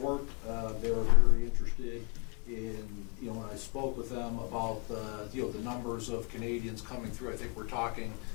They were very interested in, when I spoke with them about the numbers of Canadians coming through. I think we're talking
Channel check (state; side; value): quieter; right; 31.8 dB